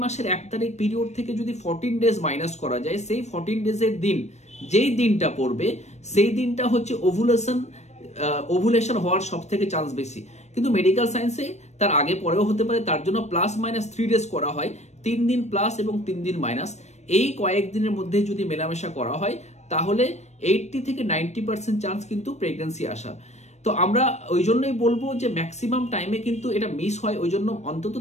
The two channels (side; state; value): right; late; 0.33 ms